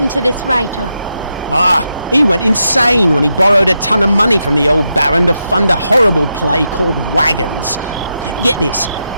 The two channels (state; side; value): inverted; both; correlation -0.86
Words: to this writer? He went insane when he borrowed a ton of money from the old Baron to fund a horrible play called Wagons. Get this,